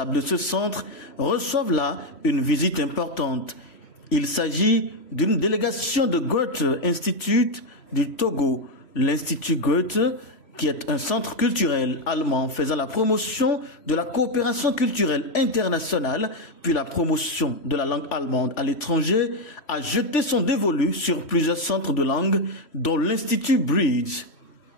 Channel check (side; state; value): right; late; 3.4 ms